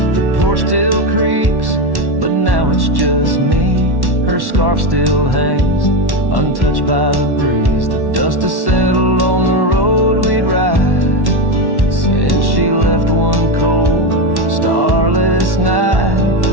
The porch still creaks, but now it's just me. Her scarf still hangs, untouched by the breeze. The dust has settled on the road we'd ride since she left one cold, starless night.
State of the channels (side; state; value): left; late; 1.1 ms